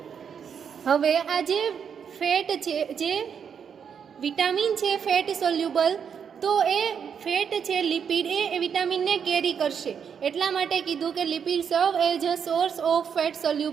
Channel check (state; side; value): quieter; left; 7.3 dB